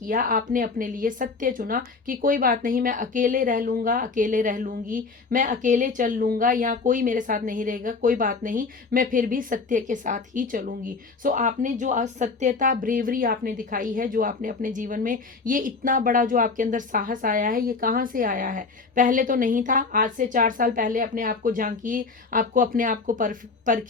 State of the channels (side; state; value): right; quieter; 4.3 dB